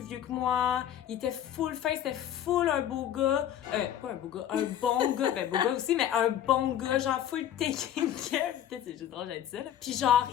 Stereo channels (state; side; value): quieter; right; 10.7 dB